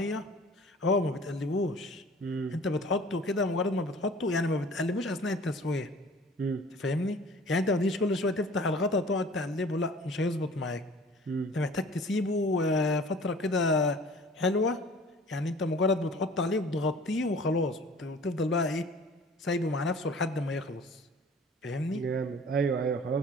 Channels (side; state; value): both; normal; correlation 0.47